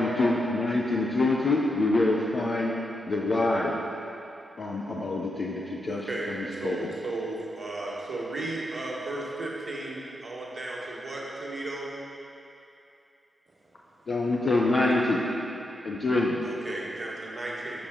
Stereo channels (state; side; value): normal; both; correlation 0.83